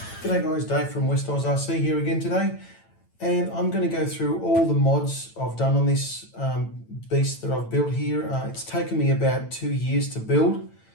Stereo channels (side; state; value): right; late; 8.9 ms